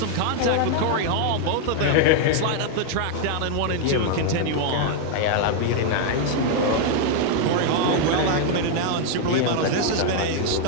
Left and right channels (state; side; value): different; both; correlation 0.01